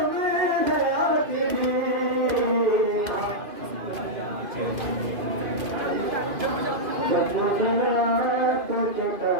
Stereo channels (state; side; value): late; left; 2.5 ms